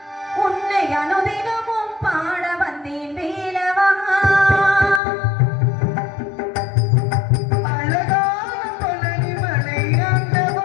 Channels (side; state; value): right; drops out; at 5.0 s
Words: உன்னை அனுதினமும் பாட வந்தேன் வேலவா.